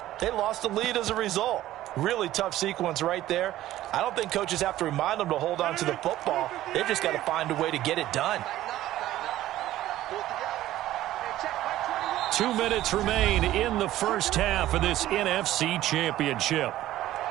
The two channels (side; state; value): left; quieter; 14.4 dB